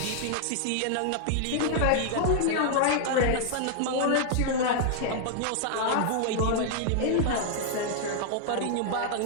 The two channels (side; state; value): both; different; correlation -0.01